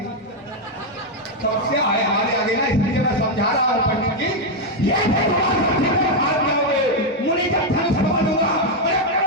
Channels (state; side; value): normal; both; correlation 0.02